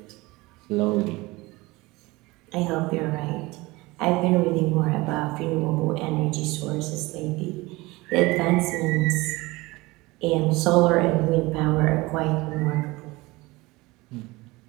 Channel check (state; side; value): quieter; left; 21.8 dB